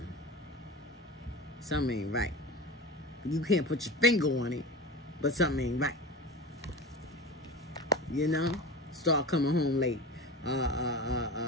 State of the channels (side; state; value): both; normal; correlation 0.31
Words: something ain't right. You can't put your finger on it, but something ain't right. You know? Start coming home late.